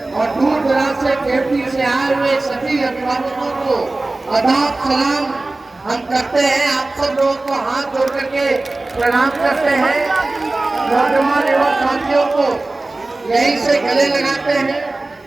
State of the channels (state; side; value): quieter; left; 3.0 dB